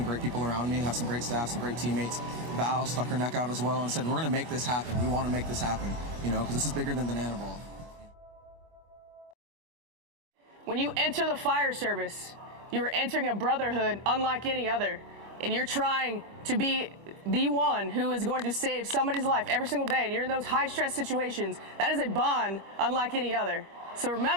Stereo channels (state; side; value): late; left; 24 ms